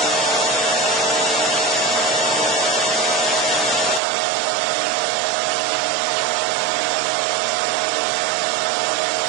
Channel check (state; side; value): drops out; left; at 4.0 s